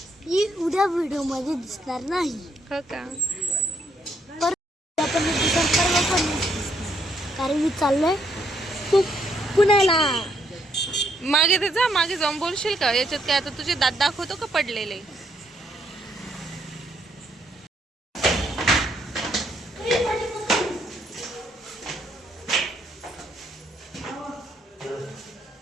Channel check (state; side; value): normal; both; correlation 0.72